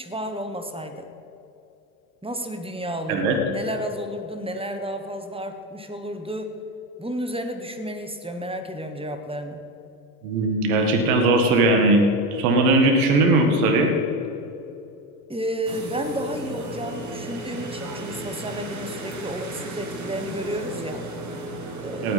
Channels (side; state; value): both; normal; correlation 0.19